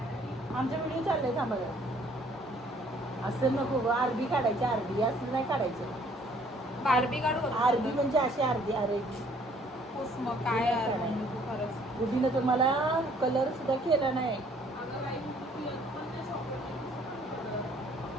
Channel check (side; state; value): both; normal; correlation 0.60